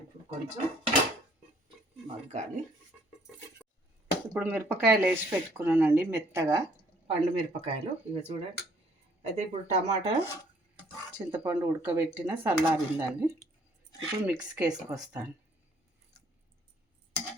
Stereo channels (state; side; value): normal; both; correlation 0.63